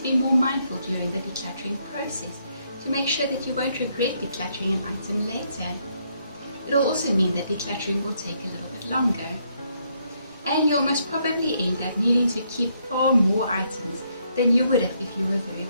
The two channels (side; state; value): both; inverted; correlation -0.73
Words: be more mindful during the decluttering process to make sure that you won't regret decluttering an item later. It'll also mean that decluttering will take a little bit longer. And you'll most probably end up needing to keep far more items than you would have if you were very